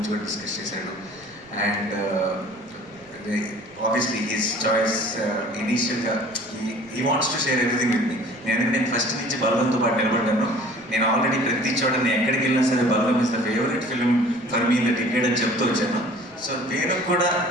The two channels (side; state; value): right; noise; rumble, 29 dB below the sound